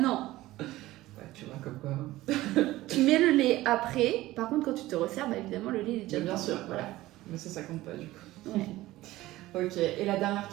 Ouais, tu vois comme quoi. Tu mets le lait après. Par contre, quand tu te resserres, bah, évidemment, le lait est déjà bien sûr, voilà. Mais ça compte pas du coup. Ouais. Ok, et la dernière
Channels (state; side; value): quieter; left; 17.1 dB